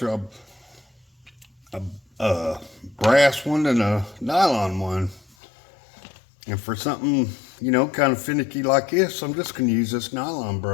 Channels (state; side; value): drops out; right; at 5.4 s